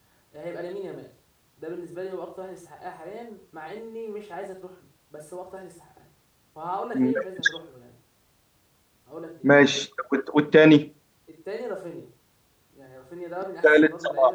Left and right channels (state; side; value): identical; both; correlation 1.00